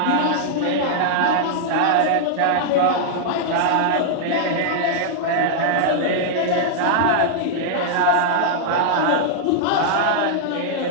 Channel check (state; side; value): different; both; correlation -0.01